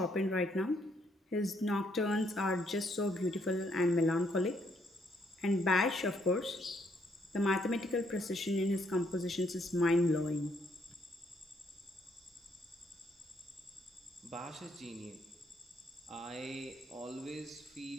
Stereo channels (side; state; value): both; normal; correlation 0.71